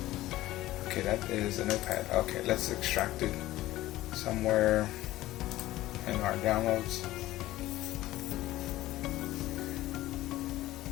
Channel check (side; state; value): right; quieter; 16.1 dB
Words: Okay, that is a notepad. Okay, let's extract it somewhere in our downloads.